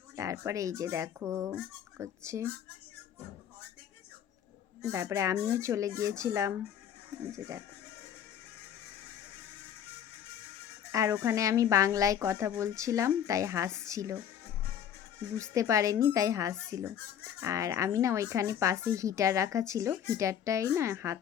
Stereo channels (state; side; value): quieter; right; 9.2 dB